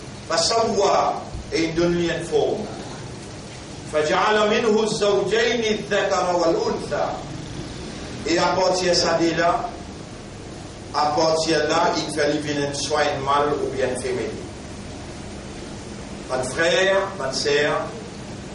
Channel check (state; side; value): identical; both; correlation 1.00